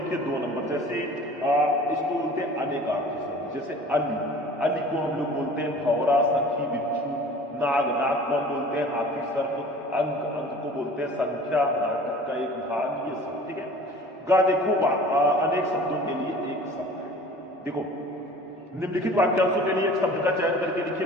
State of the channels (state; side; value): normal; both; correlation 0.45